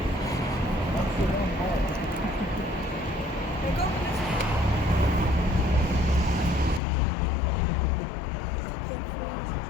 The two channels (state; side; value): drops out; right; at 6.8 s